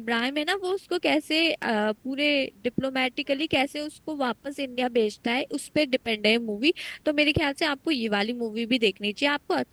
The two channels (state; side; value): identical; both; correlation 1.00